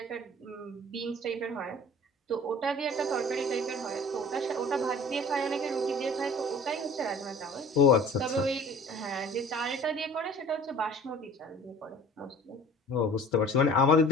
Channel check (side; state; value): both; normal; correlation 0.43